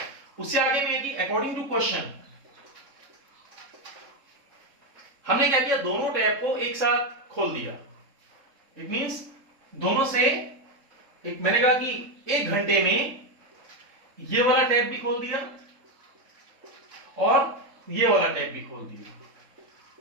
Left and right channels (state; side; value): late; left; 3.7 ms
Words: उससे आगे में कि अकॉर्डिंग टू क्वेश्चन हमने क्या किया? दोनों टैप को एक साथ खोल दिया। इट मींस दोनों से एक, मैंने कहा कि 1 घंटे में ये वाला टैप भी खोल दिया और ये वाला टैप भी खोल दिया।